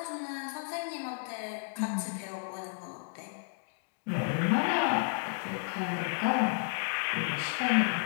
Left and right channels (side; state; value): right; silent; digital silence